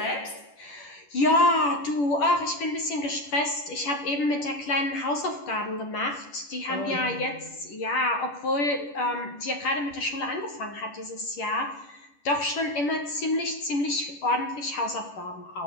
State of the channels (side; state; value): right; late; 10 ms